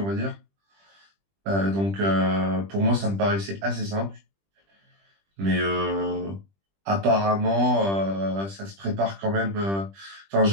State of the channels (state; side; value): late; left; 20 ms